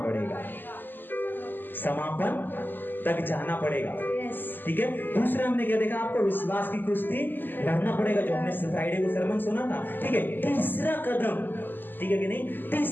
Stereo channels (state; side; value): late; right; 0.091 ms